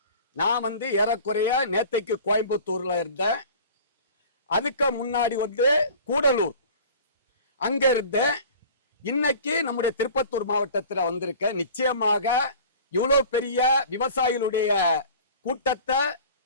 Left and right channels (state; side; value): inverted; both; correlation -0.42